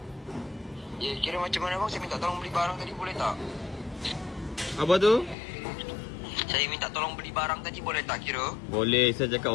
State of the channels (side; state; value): right; drops out; at 5.4 s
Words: Ya, kira macam mana bang? Saya minta tolong beli barang tadi, boleh tak? Apa tu? Saya minta tolong beli barang tadi, boleh tak kira? Boleh, saya